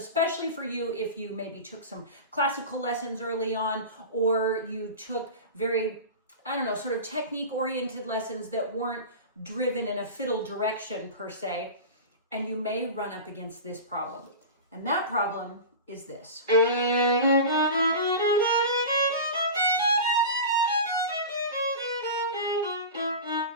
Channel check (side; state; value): both; inverted; correlation -0.30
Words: for you if you maybe took some classical lessons early on, or you took very, sort of technique-oriented lessons that weren't driven in a fiddle direction per se, and you may run up against this problem. And that problem is this.